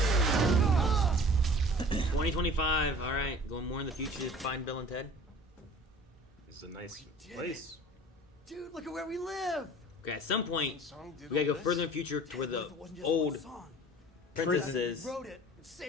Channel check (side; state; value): both; normal; correlation 0.45